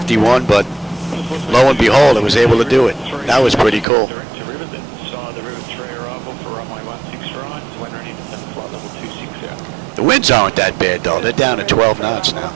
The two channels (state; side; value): drops out; left; at 3.9 s